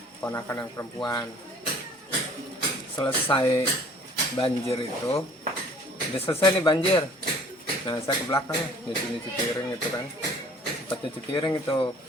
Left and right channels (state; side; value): normal; both; correlation 0.53